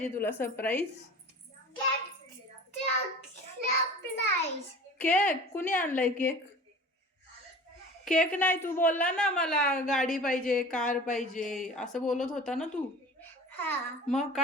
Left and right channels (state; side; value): normal; both; correlation 0.39